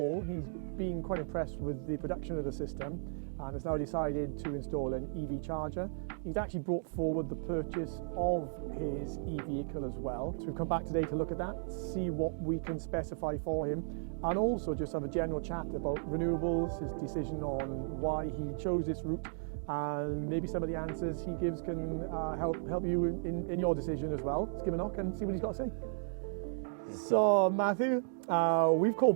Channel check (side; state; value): left; silent; digital silence